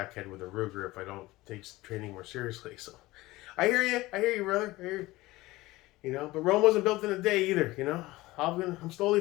with a Ruger if I don't take training more seriously. So I hear you, brother. I hear you. You know, but Rome wasn't built in a day either. You know, I'm slowly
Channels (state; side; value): quieter; right; 19.1 dB